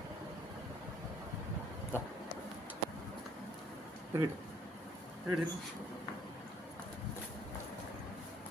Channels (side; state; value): both; normal; correlation 0.63